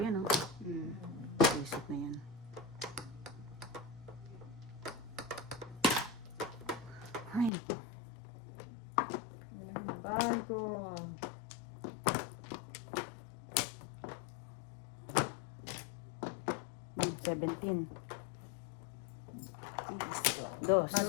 yan, oh. Mm. Isip na yan. Ay, naku. Walang bago. Hmm, 17. Dos.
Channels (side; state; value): right; drops out; at 7.5 s